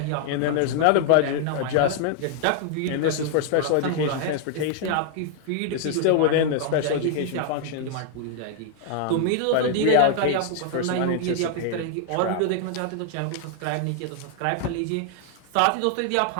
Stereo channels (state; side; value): different; both; correlation 0.00